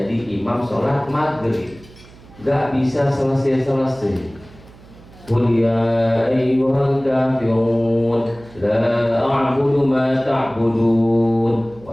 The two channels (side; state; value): right; noise; hum, 22 dB below the sound